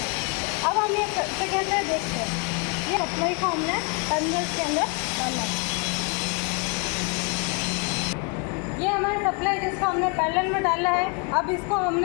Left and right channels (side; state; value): right; quieter; 34.1 dB